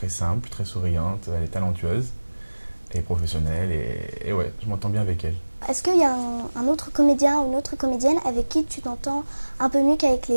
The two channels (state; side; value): inverted; both; correlation -1.00